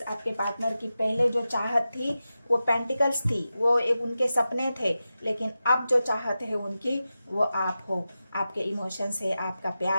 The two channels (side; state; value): both; inverted; correlation -0.92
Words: आपके पार्टनर की पहले जो चाहत थी वो पेंटिकल्स थी, वो एक उनके सपने थे, लेकिन अब जो चाहत है उनकी वो आप हो, आपके इमोशंस है, आपका